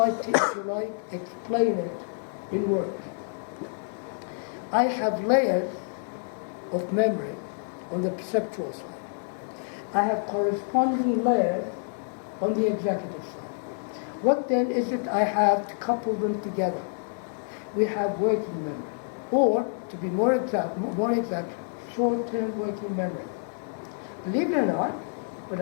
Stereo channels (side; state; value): right; silent; 59 dB below the other